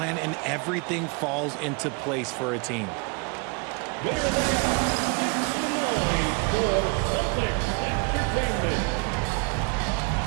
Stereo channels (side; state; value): left; quieter; 30.1 dB